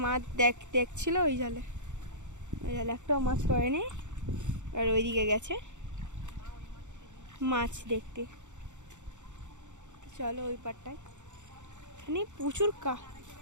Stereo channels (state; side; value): late; left; 0.85 ms